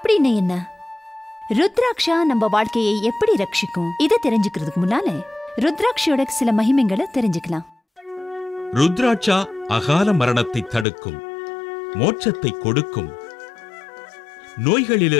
என்ன? ருத்ராட்சா நம்ம வாழ்க்கையை எப்படி ரட்சிக்கும்? இதை தெரிஞ்சுக்கிறதுக்கு முன்னால ருத்ராட்சியோட சில மகிமைகளை தெரிஞ்சுக்கலாம். ருத்ராட்சா அகால மரணத்தை தடுக்கும், மோட்சத்தை கொடுக்கும்,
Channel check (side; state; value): right; drops out; at 10.9 s